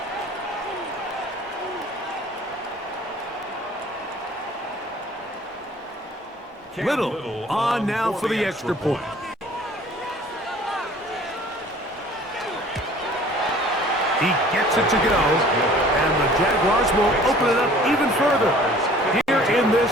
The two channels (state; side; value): normal; both; correlation 0.50